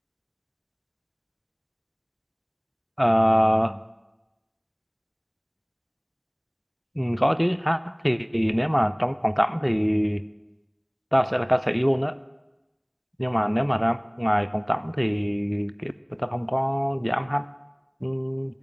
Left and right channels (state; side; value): identical; both; correlation 1.00